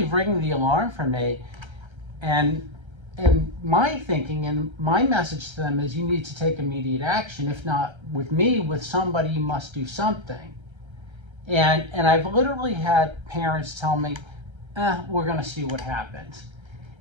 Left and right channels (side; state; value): left; late; 1.3 ms